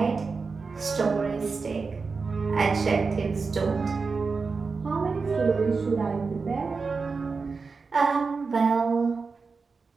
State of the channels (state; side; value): quieter; left; 4.6 dB